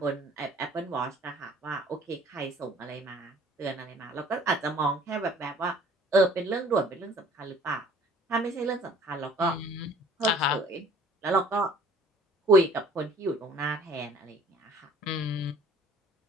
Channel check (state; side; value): normal; both; correlation 0.52